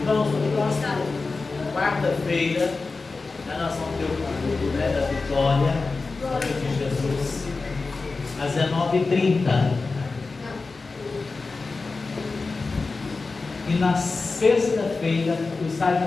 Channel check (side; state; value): right; quieter; 3.9 dB